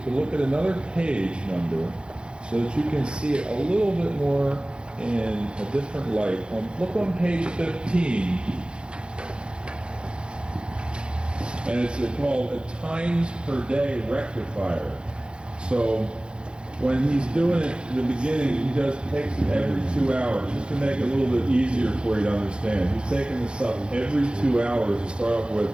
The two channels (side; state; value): left; late; 0.053 ms